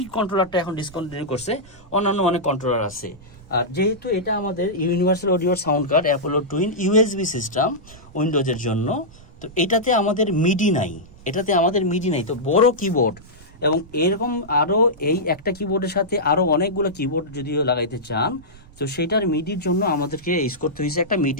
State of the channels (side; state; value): right; noise; rumble, 23 dB below the sound